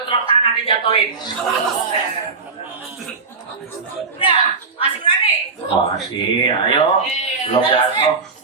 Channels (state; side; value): quieter; left; 4.5 dB